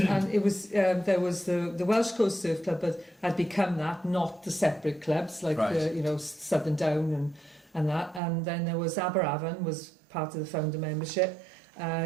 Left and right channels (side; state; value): left; drops out; at 8.2 s